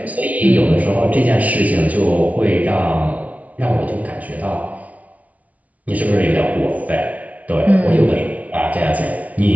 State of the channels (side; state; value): left; late; 0.069 ms